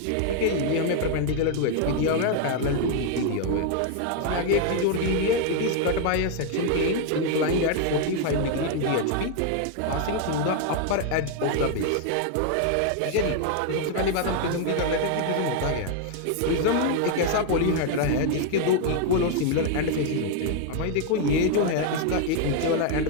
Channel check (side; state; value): both; different; correlation 0.00